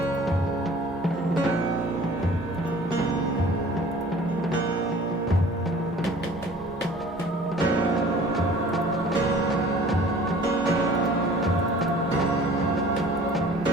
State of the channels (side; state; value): both; normal; correlation 0.48